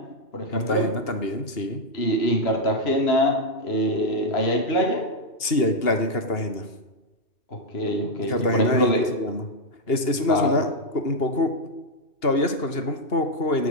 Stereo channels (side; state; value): right; late; 2.8 ms